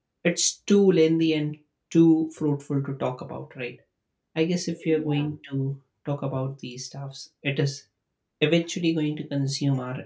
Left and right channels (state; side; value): identical; both; correlation 1.00